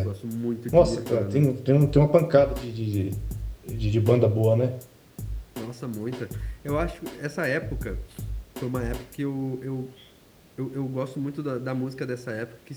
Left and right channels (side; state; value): both; identical; correlation 1.00